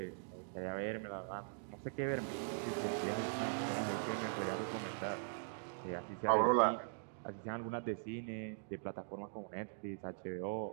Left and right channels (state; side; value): silent; left; digital silence